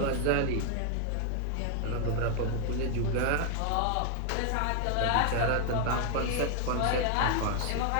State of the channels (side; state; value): both; different; correlation 0.00